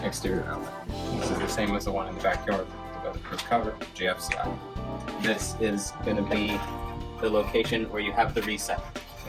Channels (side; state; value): both; identical; correlation 1.00